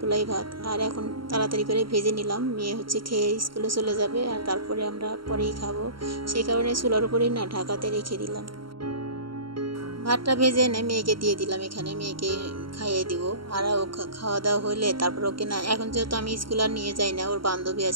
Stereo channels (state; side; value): late; left; 0.73 ms